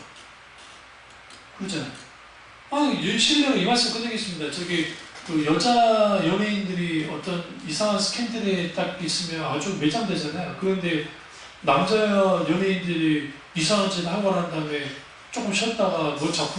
그렇잖아요. 실례로 이 말씀 끝내겠습니다. 그 여자 연예인들이 어떤 이상한 스캔들에 딱 있으면 아주 매장되잖아요. 그런데 남자 연예인들이 이상한 짓을 하고 난 다음에 조금 쉬었다가 뭐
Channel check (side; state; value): both; identical; correlation 1.00